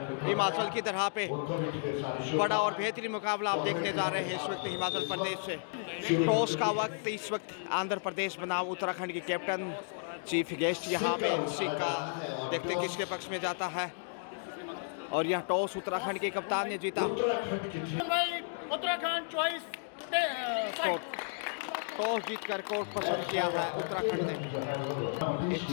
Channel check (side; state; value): right; silent; digital silence